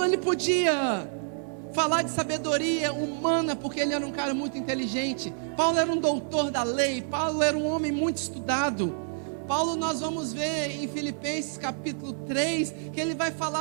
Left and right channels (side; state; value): left; silent; digital silence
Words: ele podia falar de sabedoria humana, porque ele era um cara muito inteligente. Paulo era um doutor da lei. Paulo era um homem muito estudado. Paulo, nós vamos ver em Filipenses capítulo 3, que ele vai